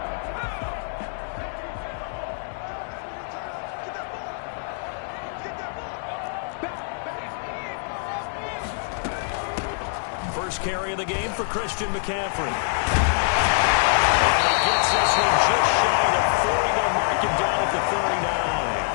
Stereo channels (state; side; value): silent; right; digital silence